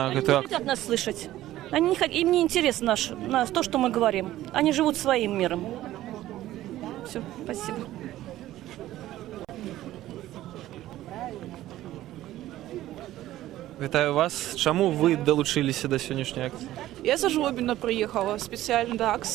гэтую Они не акцыю? хотят нас слышать. Им не интересно то, что мы говорим. Они живут своим миром. Все, спасибо. Вітаю вас. Чому ви долучилися до сьогоднішньої акції? Я за Жлобина приехала специально до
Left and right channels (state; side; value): quieter; left; 14.5 dB